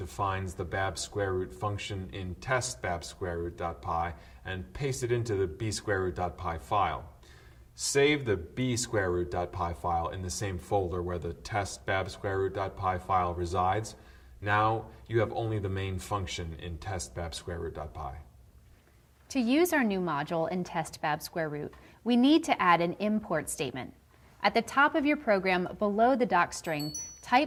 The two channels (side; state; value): both; identical; correlation 1.00